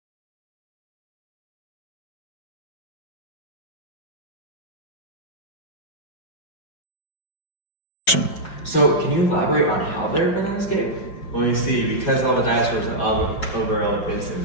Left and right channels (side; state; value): right; late; 5.4 ms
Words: So can you elaborate on how they're gonna escape? Well, you see, because all the dinosaurs are all over elephants and